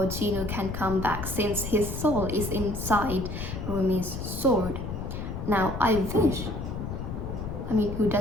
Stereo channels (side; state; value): left; noise; rumble, 6 dB below the sound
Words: Gino can come back since his soul is inside Rumi's sword. Now who